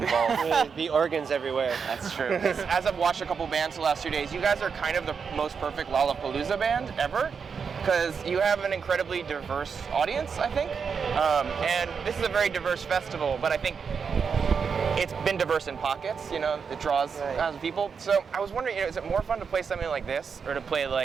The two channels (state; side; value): quieter; left; 6.0 dB